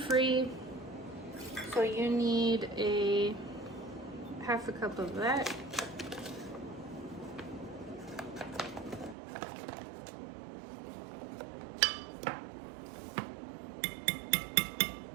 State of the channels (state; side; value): drops out; left; at 9.2 s